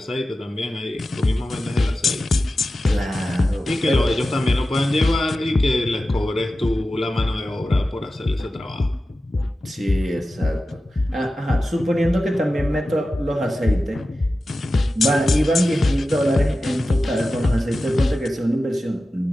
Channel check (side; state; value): both; normal; correlation 0.94